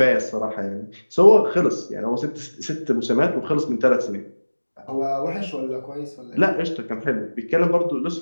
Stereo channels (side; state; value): both; inverted; correlation -1.00